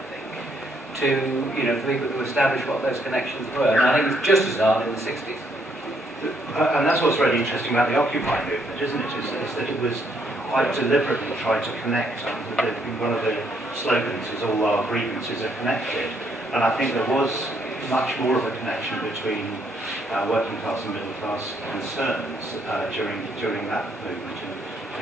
think, to, for people to establish what those connections were. And I think it's just as hard in the 60s. And that's what's really interesting about the Occupy movement, isn't it? Is that it was quite deliberately tried to connect. One of the slogans is all our grievances are connected. And I think there was much more of a connection between working class and middle class concerns during that movement in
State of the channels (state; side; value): normal; both; correlation 0.71